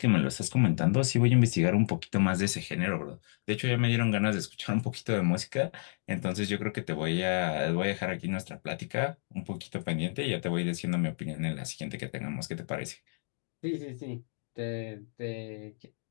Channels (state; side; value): silent; right; digital silence